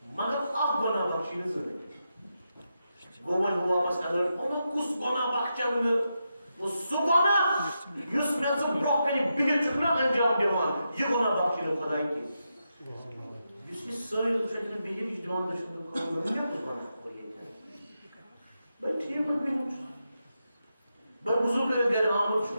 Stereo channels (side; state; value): both; inverted; correlation -0.86